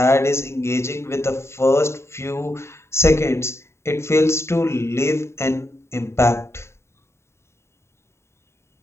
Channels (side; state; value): right; late; 0.13 ms